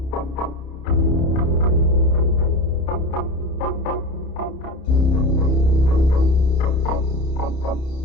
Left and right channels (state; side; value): late; right; 30 ms